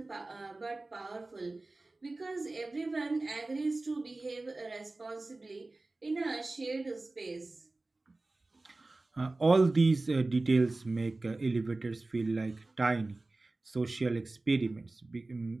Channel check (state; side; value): quieter; left; 3.1 dB